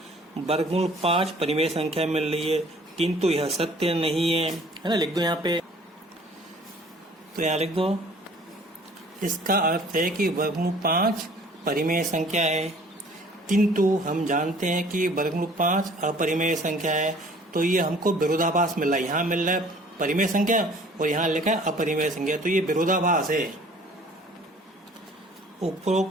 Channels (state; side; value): normal; both; correlation 0.53